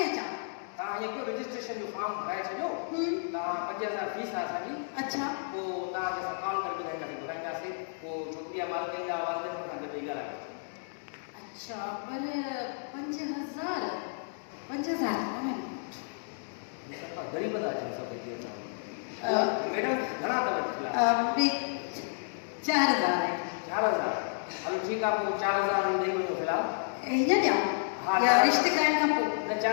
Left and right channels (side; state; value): right; silent; digital silence